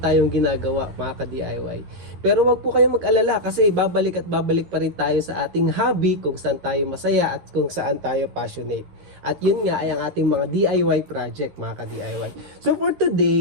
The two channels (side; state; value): left; late; 11 ms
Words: ginagawa, mga ka-DIY. Pero wag po kayong mag-alala kasi babalik at babalik pa rin tayo sa ating hobby kung saan tayo masaya at kung saan tayo passionate. At yun nga ay ang ating mga DIY project, mga ka-DIY. So for